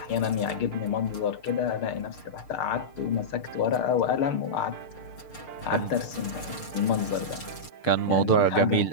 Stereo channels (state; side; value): late; right; 6.6 ms